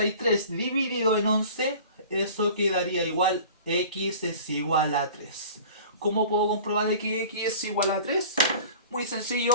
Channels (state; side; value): inverted; both; correlation -0.42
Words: dividido en 11. Eso quedaría igual, x es igual a 3. ¿Cómo puedo comprobar de que x es igual a 3? Muy